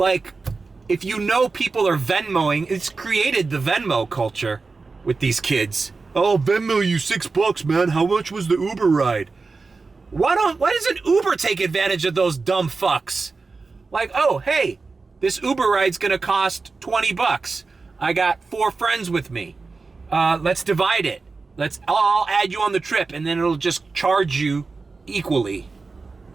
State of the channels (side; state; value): left; quieter; 4.1 dB